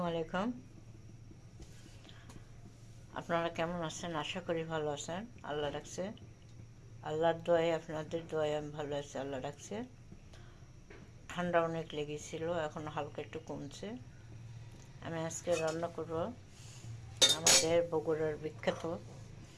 আলাইকুম। আপনারা কেমন আছেন? আশা করি ভালো আছেন। আল্লাহ রাখছে, আল্লাহর দোয়ায়, আপনাদের দোয়ায় আমি ভালো আছি। আল্লাহ রাখছে। ঠান্ডা অনেক লেগেছিল, এখন হালকা একটু কমছে। আমি আজকে রান্না করব আমাদের বগুড়ার বিখ্যাত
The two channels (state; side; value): identical; both; correlation 1.00